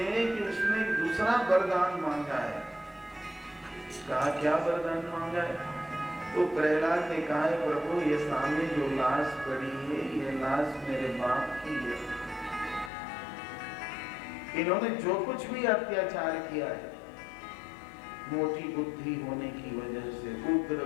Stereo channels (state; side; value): drops out; right; at 12.9 s